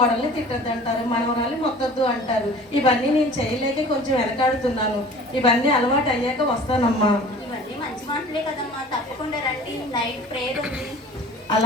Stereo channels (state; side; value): normal; both; correlation 0.45